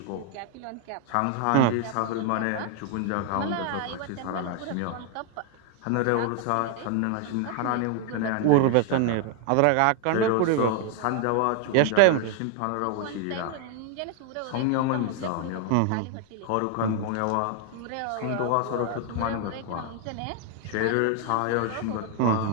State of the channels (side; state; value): both; different; correlation 0.00